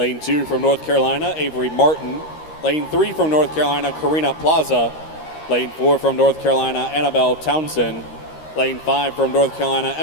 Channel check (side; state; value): right; late; 13 ms